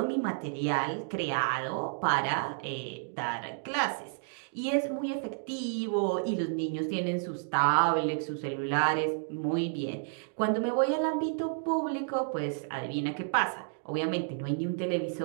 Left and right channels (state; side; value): silent; left; digital silence